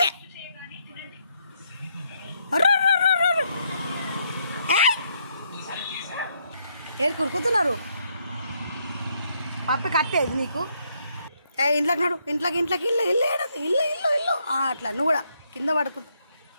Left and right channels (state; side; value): inverted; both; correlation -0.74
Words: ఏడు కురుకుతున్నారు పప్పి కట్టేది నీకు ఇంట్లోకి నడు ఇంట్లోకి ఇల్లు ఇల్లు ఏడది ఇల్లు ఇల్లు ఇల్లు అట్లా నువ్వు కూడా కింద పడుకుంటా